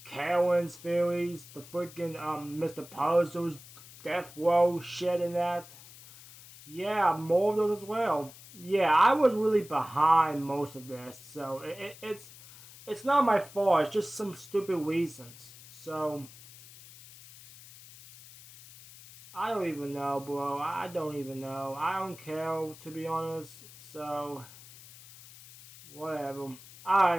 Karen's theories, the freaking Mr. Puzzle's death row shit and that. Yeah, more of those as well. Yeah, I was really behind most of this, so it's not my fault. It's just some stupid reasons. So I don't even know, bro. I don't even know. I don't care, to be honest. So whatever.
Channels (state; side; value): noise; left; hiss, 19 dB below the sound